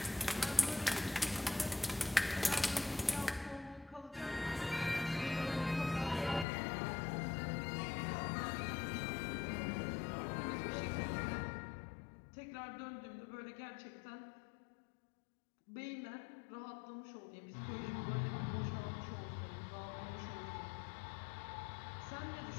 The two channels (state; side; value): drops out; right; at 6.5 s